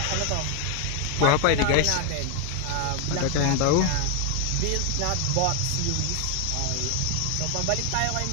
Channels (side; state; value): both; different; correlation 0.01